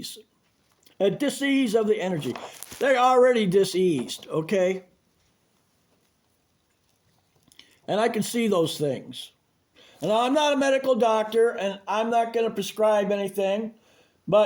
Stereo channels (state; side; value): identical; both; correlation 1.00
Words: A dis-ease of the energy. They're already dis-eased, okay? And I can see those things. And I'm not a medical doctor, and I'm not going to prescribe anything,